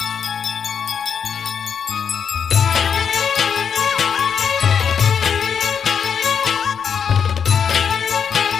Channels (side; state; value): right; quieter; 7.1 dB